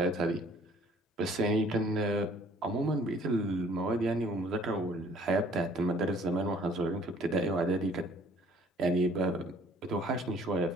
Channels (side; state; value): both; normal; correlation 0.56